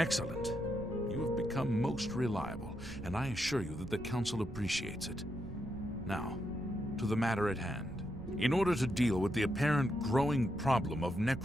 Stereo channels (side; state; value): right; noise; rumble, 13 dB below the sound